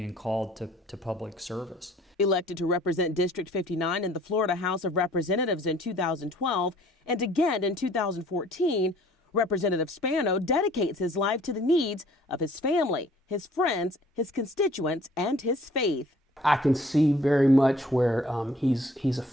called to public service. Elected to represent District 59 in the Florida House of Representatives in 2012 and again in 2014, Representative Spano dedicates his life to the needs of his family, his friends, his constituents, and his faith. I can see very much where he's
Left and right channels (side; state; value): both; normal; correlation 0.56